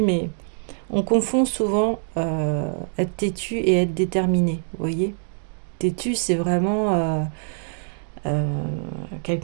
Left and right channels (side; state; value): left; silent; 63 dB below the other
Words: mais on confond souvent être têtu et être déterminé. Vous voyez, têtu, c'est vraiment